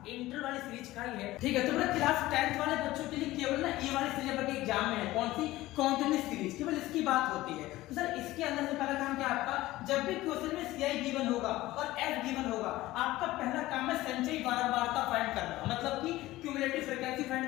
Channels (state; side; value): quieter; right; 17.2 dB